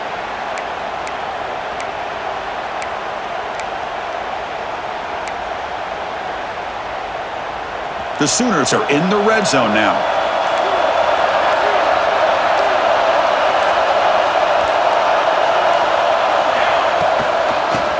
The Sooners are in the red zone now.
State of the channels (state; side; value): identical; both; correlation 1.00